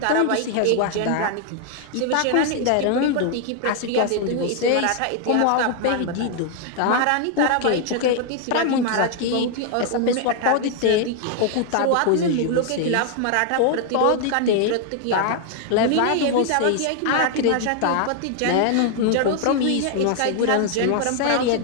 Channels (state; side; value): different; both; correlation 0.00